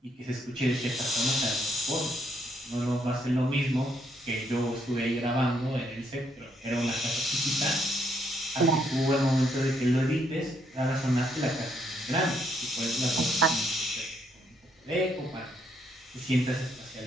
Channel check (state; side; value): normal; both; correlation 0.72